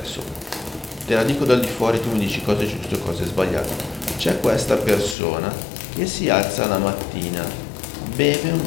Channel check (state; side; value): drops out; right; at 5.2 s